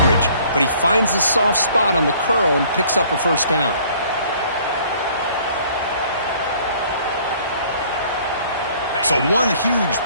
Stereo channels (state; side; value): inverted; both; correlation -0.56